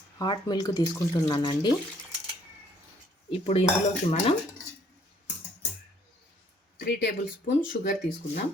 హాట్ మిల్క్ తీసుకుంటున్నానండి. ఇప్పుడు ఇందులోకి మనం 3 టేబుల్ స్పూన్ షుగర్ తీసుకుందాం.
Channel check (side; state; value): both; normal; correlation 0.63